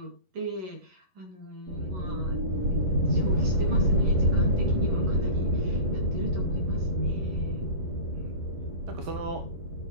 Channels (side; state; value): left; late; 11 ms